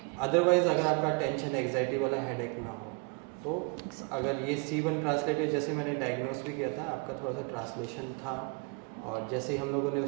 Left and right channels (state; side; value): quieter; left; 32.3 dB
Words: अदरवाइज़ अगर आपका टेंशन एग्जाइटी वाला हेडेक ना हो तो अगर ये C1 ट्रांसलेटेड, जैसे मैंने डायग्नोस भी किया था, आपका थोड़ा सा ट्रांसलेशन था, और जैसे ही हम लोगों ने